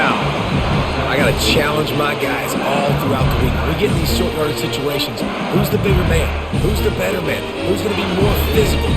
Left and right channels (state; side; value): identical; both; correlation 1.00